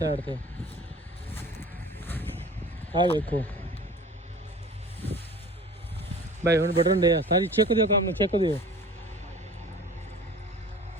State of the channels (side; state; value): both; normal; correlation 0.43